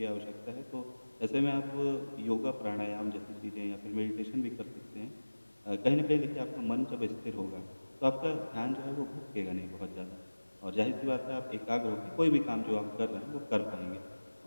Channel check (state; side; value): inverted; both; correlation -1.00